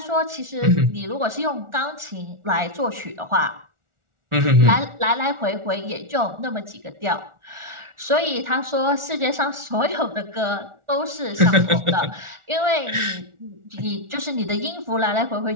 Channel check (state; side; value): late; left; 1.4 ms